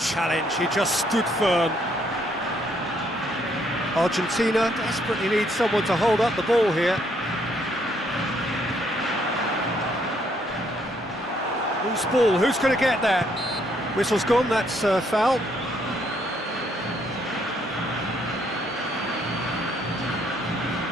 he just stood firm. Argentina desperately needs someone to hold up the ball here. Who's ball? Who's going to get that? Whistle's gone, that's foul.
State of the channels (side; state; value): both; normal; correlation 0.70